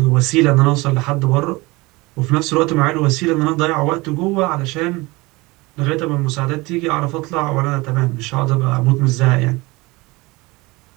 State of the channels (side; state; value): left; quieter; 23.0 dB